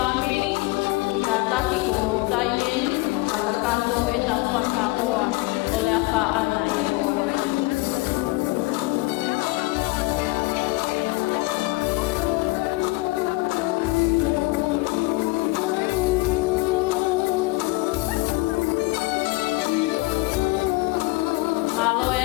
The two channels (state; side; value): quieter; right; 22.8 dB